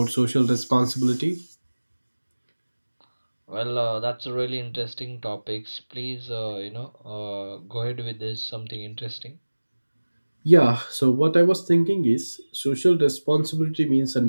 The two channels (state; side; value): inverted; both; correlation -1.00